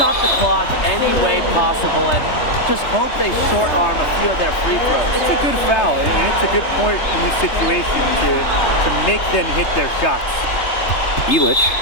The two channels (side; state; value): right; late; 3.3 ms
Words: the clock any way possible and just hope they short arm a few of their free throws. It's a good foul, and it's a good point in this situation to make them hit their shots. Elich.